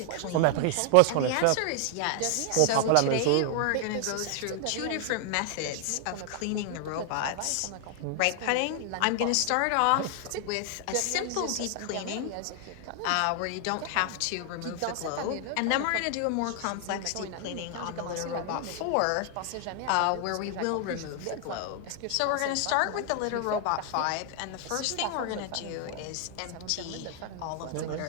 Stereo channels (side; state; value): both; different; correlation 0.00